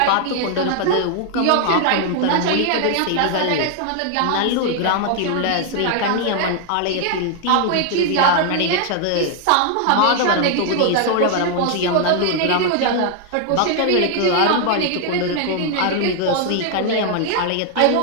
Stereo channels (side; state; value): both; different; correlation 0.00